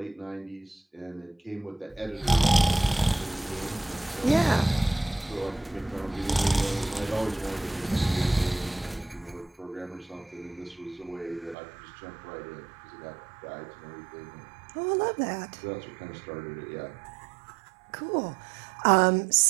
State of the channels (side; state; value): left; drops out; at 11.6 s